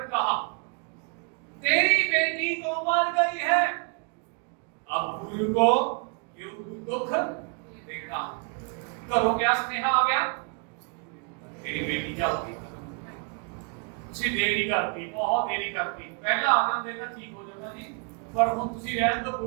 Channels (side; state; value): left; quieter; 35.1 dB